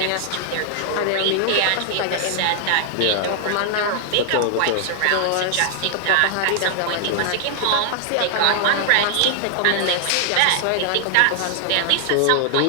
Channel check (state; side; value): different; both; correlation 0.00